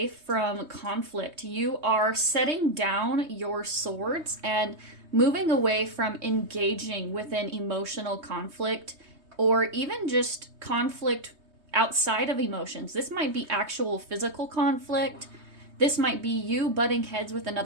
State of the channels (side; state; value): left; late; 3.2 ms